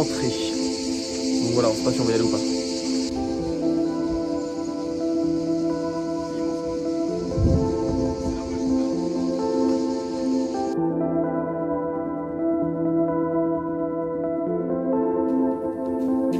Donc voilà, on sait pas si on va y aller ou pas.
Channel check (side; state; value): both; identical; correlation 1.00